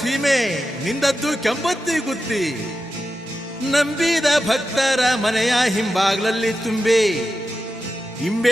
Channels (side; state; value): both; normal; correlation 0.90